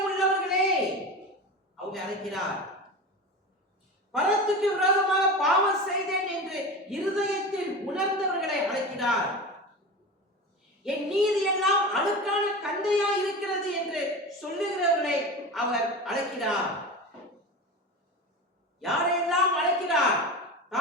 உள்ளவர்களே அவங்க அழைக்கிறார். பரத்துக்கு விரோதமாக பாவம் செய்தேன் என்று இருதயத்தில் உணர்ந்தவர்களை அழைக்கிறார். என் நீதி எல்லாம் அழுக்கான கந்தையா இருக்கிறது என்று சொல்லுகிறவர்களை அவர் அழைக்கிறார். யாரையெல்லாம் அழைக்கிறார்?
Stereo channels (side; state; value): both; normal; correlation 0.28